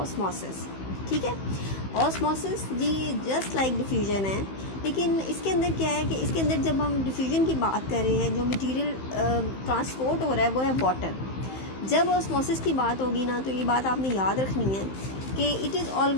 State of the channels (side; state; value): right; late; 15 ms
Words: ठीक है, ऑस्मोसिस जी जस्ट लाइक डिफ्यूजन है, लेकिन इसके अंदर क्या है कि इसके अंदर जब हम डिफ्यूजन की बात कर रहे हैं, जो मटेरियल ट्रांसपोर्ट हो रहा है वो है वाटर. जब ऑस्मोसिस की बात होगी ना, तो ये बात आपने याद रखनी है कि it is